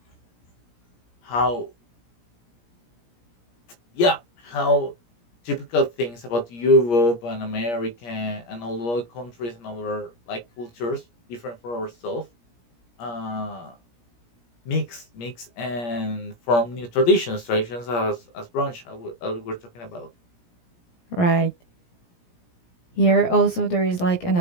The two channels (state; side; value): late; right; 17 ms